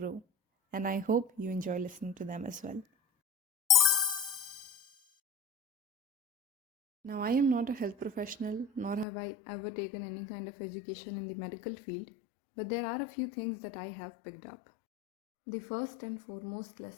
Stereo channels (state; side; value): drops out; right; at 9.1 s